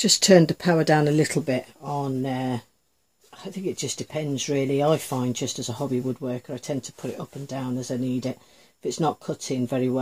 turned the power down a little bit on, I think it just depends really. I find just as a hobby woodworker I tend to put it up and down as I need it. If it's not cutting very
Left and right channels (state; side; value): identical; both; correlation 1.00